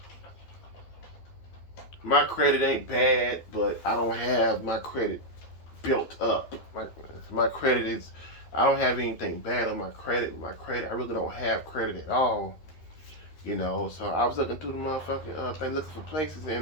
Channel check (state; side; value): late; right; 12 ms